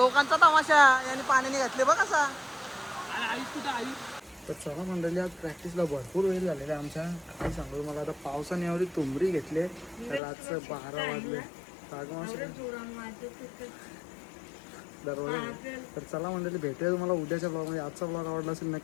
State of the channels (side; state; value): right; drops out; at 10.2 s